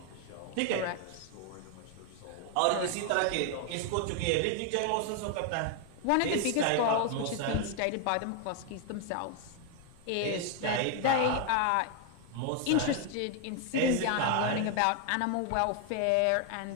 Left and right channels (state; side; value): different; both; correlation 0.00